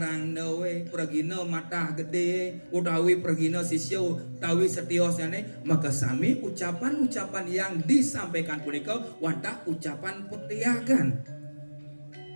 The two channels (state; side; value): inverted; both; correlation -1.00